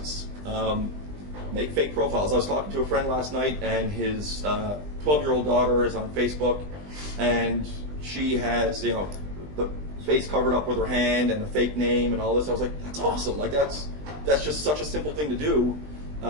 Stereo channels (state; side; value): late; left; 20 ms